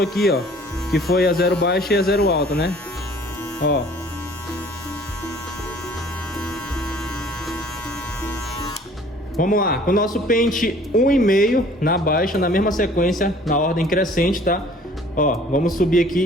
aqui, ó. Que foi a 0 baixa e a 0 alta, né? Ó. Vamos lá, com o nosso pente 1,5 na baixa, na mesma sequência, na ordem crescente, tá? Ó, vamos subir aqui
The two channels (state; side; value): normal; both; correlation 0.53